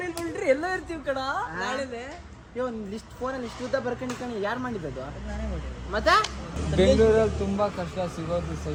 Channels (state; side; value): identical; both; correlation 1.00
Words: ಲೈನ್ ಬಂದ್ರಿ ಎಲ್ಲ ಇರ್ತೀವಿ ಕಣ ನಾಳೆನೆ. ಒಂದು ಲಿಸ್ಟ್ ಫೋನಲ್ಲಿ ಇಷ್ಟು ಉದ್ದ ಬರ್ಕೊಂಡು ಯಾರು ಮಾಡಿದ್ದು? ಮತ್ತೆ ಬೆಂಗಳೂರಲ್ಲಿ ತುಂಬಾ ಕಷ್ಟ ಸಿಗೋದು